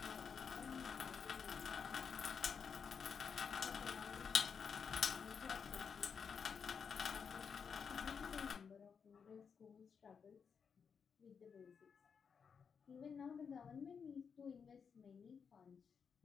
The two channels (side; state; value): right; quieter; 6.3 dB